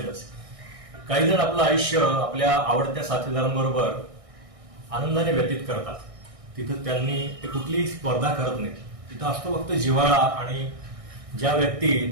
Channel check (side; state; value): left; late; 1.6 ms